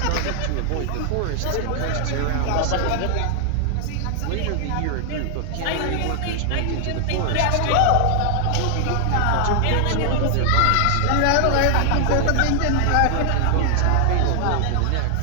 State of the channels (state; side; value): different; both; correlation 0.00